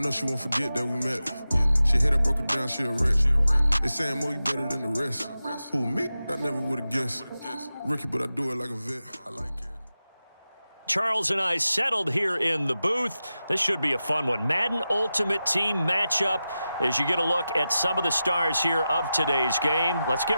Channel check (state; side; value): inverted; both; correlation -0.93